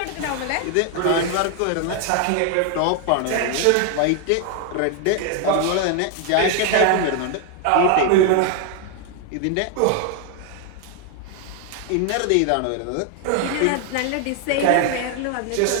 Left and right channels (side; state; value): both; different; correlation 0.00